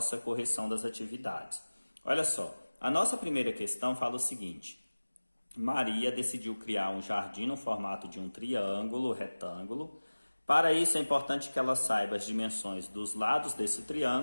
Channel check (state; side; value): inverted; both; correlation -1.00